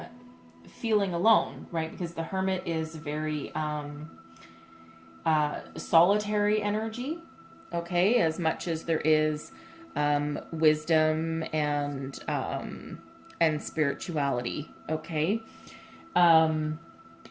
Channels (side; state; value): both; identical; correlation 1.00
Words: feeling alone, right? Because the Hermit is very solitary energy, okay? As much as there is wisdom and spirituality, okay? So I'm